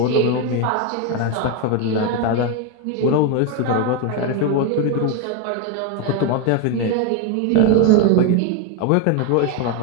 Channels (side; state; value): both; different; correlation 0.01